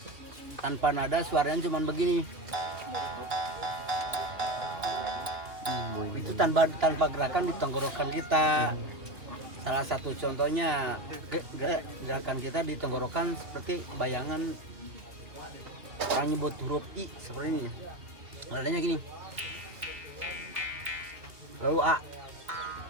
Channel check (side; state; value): left; late; 2.8 ms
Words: Tanpa nada suaranya cuma begini. Itu tanpa gerakan di tenggorokan kita. Salah satu contohnya gerakan kita di tenggorokan seperti bayangan orang nyebut huruf I seperti ini. Nadanya gini. Lalu A,